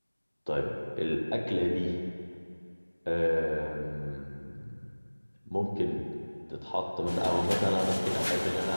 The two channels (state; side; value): inverted; both; correlation -1.00